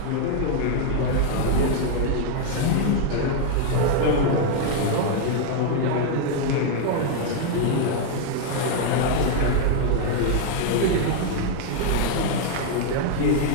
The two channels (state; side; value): different; both; correlation 0.00